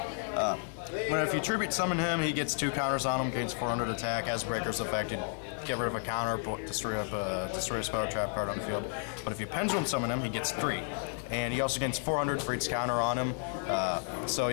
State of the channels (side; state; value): right; silent; 56 dB below the other